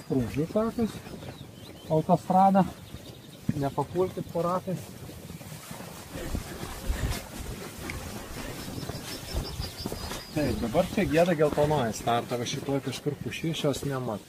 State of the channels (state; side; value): identical; both; correlation 1.00